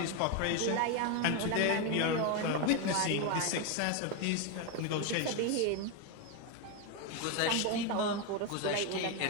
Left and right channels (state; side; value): different; both; correlation 0.02